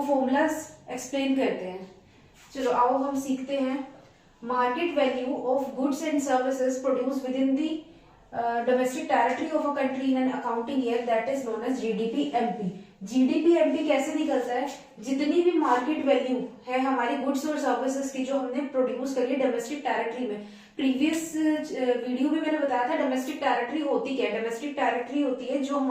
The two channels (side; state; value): both; identical; correlation 1.00